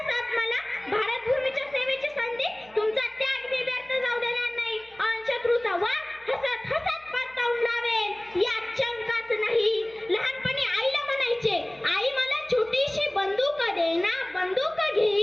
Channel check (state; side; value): noise; right; hum, 28 dB below the sound